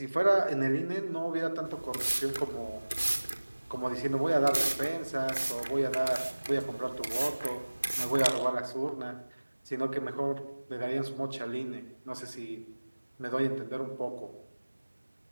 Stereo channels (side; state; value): both; inverted; correlation -1.00